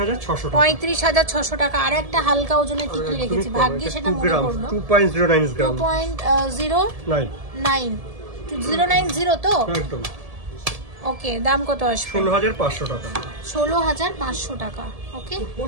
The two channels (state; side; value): late; left; 1.7 ms